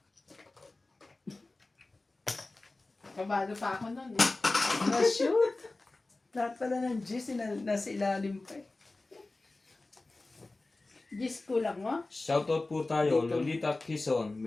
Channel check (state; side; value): quieter; right; 3.1 dB